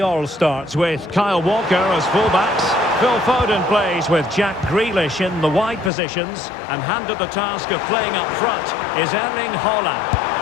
starts with Kyle Walker as fullbacks. Phil Foden plays with Jack Grealish in the wide positions. And handed the task of playing up front is Erling Haaland.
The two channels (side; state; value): right; drops out; at 5.9 s